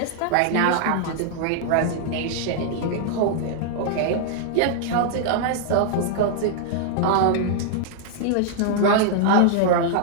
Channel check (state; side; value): different; both; correlation -0.01